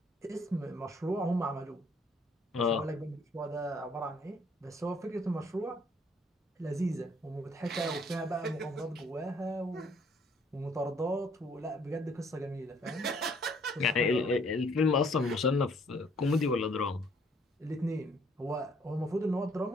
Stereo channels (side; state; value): both; normal; correlation 0.62